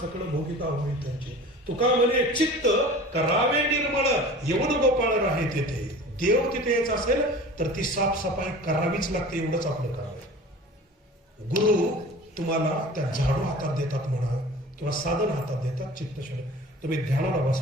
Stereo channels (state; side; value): normal; both; correlation 0.40